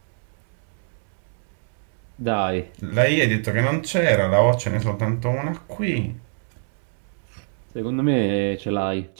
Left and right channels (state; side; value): silent; left; 62 dB below the other